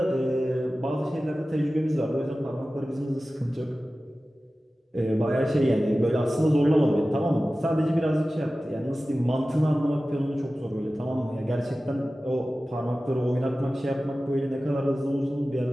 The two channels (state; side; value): normal; both; correlation 0.96